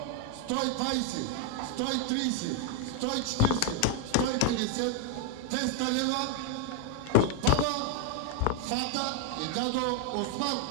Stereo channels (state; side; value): different; both; correlation 0.00